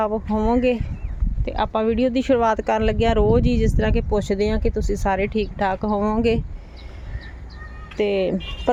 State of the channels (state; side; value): identical; both; correlation 1.00